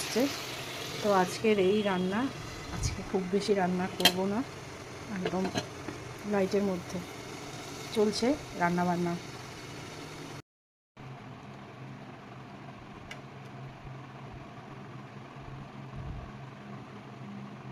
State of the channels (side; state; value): both; identical; correlation 1.00